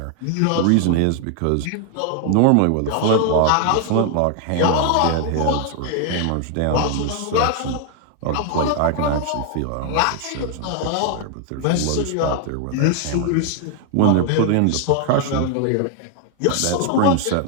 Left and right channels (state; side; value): different; both; correlation 0.00